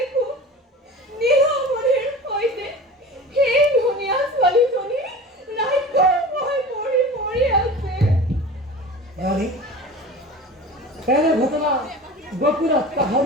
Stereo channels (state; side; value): normal; both; correlation 0.36